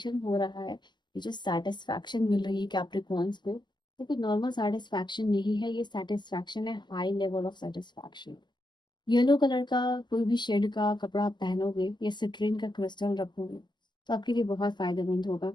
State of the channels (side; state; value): right; late; 0.21 ms